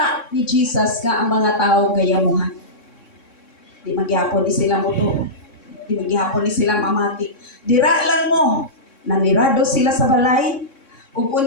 ni Jesus nga ang mga tao gayamuhan. Di magyapon ni sila moto. Di magyapon ni sila mamati. Dira lang mo. Nanirado sila sa balay. Ug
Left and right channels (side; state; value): right; late; 3.6 ms